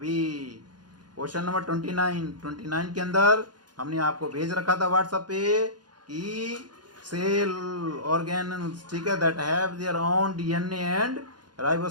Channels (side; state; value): left; late; 0.70 ms